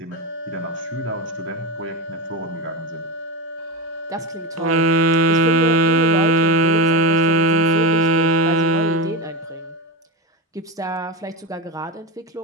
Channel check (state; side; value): normal; both; correlation 0.17